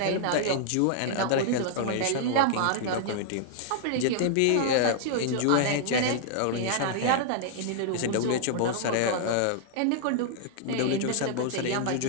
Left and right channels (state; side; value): different; both; correlation -0.01